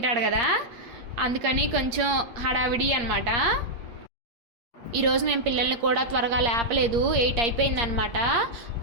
కదా, అందుకని కొంచెం హడావిడి అనమాట. ఈరోజు మేము పిల్లల్ని కూడా త్వరగా లేపలేదు, 8 అయిపోయిందనమాట.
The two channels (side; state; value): left; late; 8.6 ms